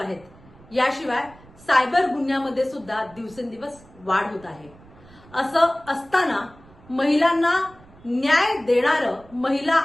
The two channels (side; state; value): right; noise; rumble, 24 dB below the sound